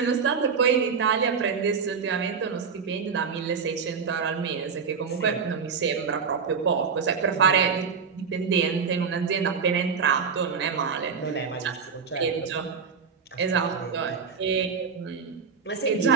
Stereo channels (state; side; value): quieter; left; 5.9 dB